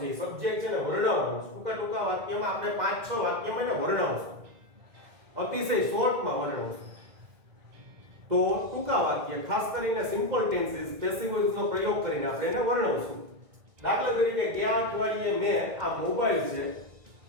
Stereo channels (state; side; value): late; left; 1.9 ms